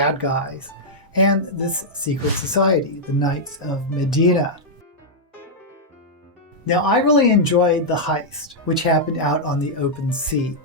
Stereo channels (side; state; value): both; normal; correlation -0.06